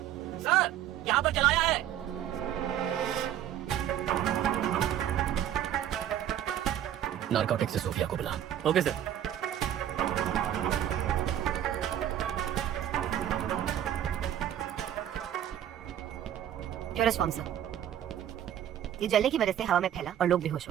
सर, यहाँ पर चलाया है। नारकोटिक से सोफिया को बुला। Okay sir. Purest form sir. ये जलने की वजह से हवा में फैला और लोग बेहोश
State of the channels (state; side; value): quieter; left; 10.9 dB